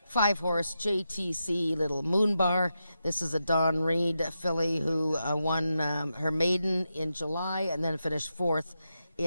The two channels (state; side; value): inverted; both; correlation -0.87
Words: 5-horse JTC Little Moon Bar. This is a Dawn Reed filly who won her maiden in July and then finished 4th